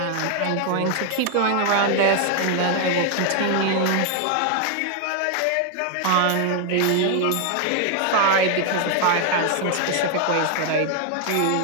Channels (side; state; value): both; different; correlation 0.00